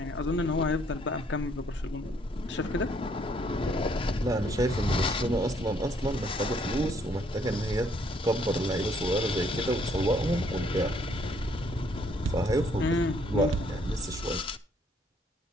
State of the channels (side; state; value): both; normal; correlation 0.67